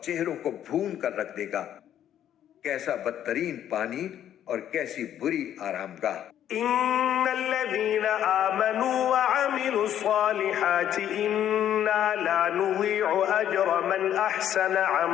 چہروں کو بھون کر رکھ دے گا۔ کیسا بدترین پانی اور کیسی بری آرام گاہ۔ ان الذين آمنوا وعملوا الصالحات انا لا نضيع اجر من احسن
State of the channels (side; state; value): right; quieter; 10.6 dB